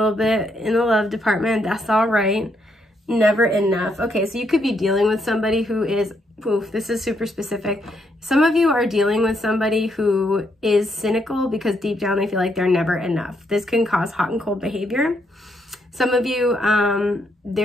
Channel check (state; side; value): normal; both; correlation 0.76